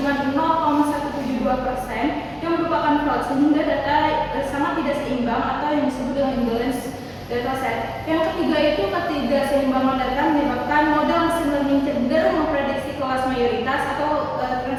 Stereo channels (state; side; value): identical; both; correlation 1.00